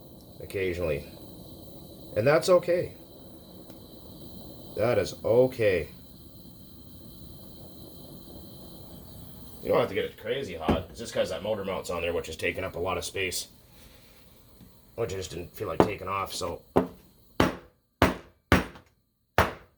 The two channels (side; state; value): both; identical; correlation 1.00